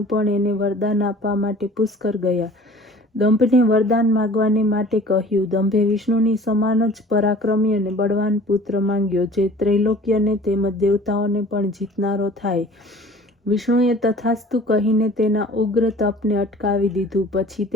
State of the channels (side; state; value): both; normal; correlation 0.47